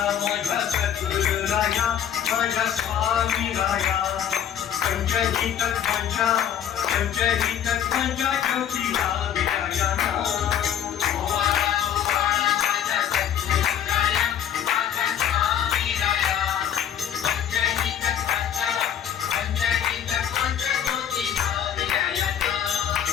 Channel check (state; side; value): quieter; right; 9.5 dB